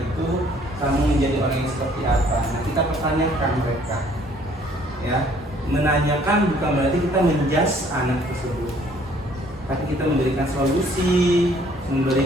itu? Kamu menjadi orang yang seperti apa? Nah, kita pertanyakan mereka. Ya, menanyakan bukan berarti kita menjudge anak tersebut, tapi kita memberikan solusi,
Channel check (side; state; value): both; normal; correlation 0.60